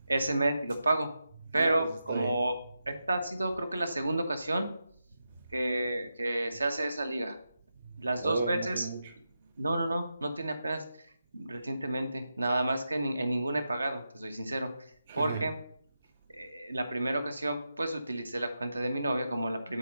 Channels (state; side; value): inverted; both; correlation -0.88